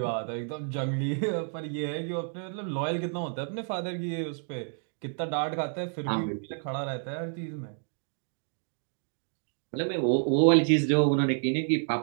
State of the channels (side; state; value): left; silent; 58 dB below the other